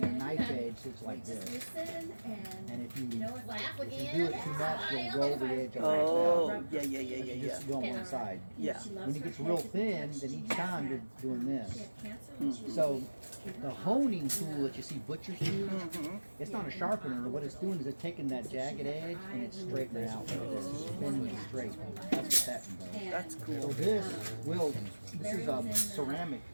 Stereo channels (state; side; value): inverted; both; correlation -1.00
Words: a again. knife edge looks like Just this. listen And if you Laugh if you again. do it too much, you'll roll the edge over. Oh, yeah, yeah, yeah, You yeah, yeah. just go on one side. Yeah. When it gets real thin, then each time you're doing this. She had cancer when she was So the honing tool that you see butchers use, Mm-hmm. it's not a sharpener. What it's doing is it's taking that jagged edge and it's straightening it out like this. It's bending it straight. That's what that does. That's So cool. this is a ceramic,